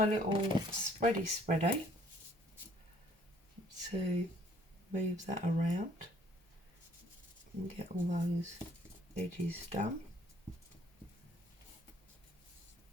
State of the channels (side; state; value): both; normal; correlation 0.60